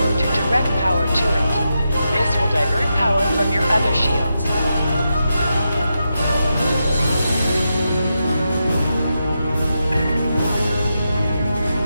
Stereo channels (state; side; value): inverted; both; correlation -0.87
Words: to direct power to it. This will divert power from your other shields.